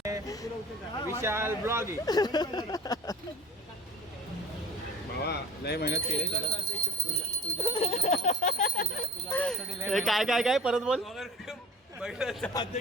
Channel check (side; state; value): both; normal; correlation 0.44